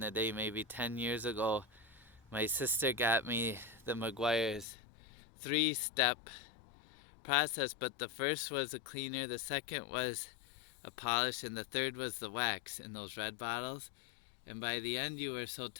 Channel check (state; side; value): drops out; right; at 4.7 s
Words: day, maybe 10 years ago, my sister got me the Meguiar's 3-step process, but the first was a cleaner, the second was a polish, and the third was the wax in those red bottles. And by the end, you were so